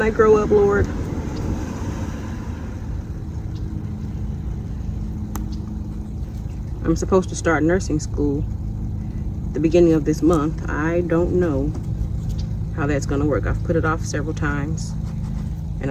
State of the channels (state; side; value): identical; both; correlation 1.00